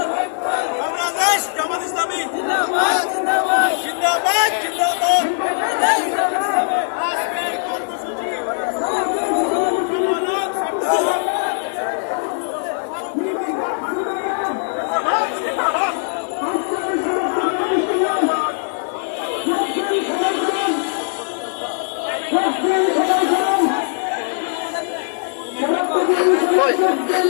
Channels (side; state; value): right; silent; digital silence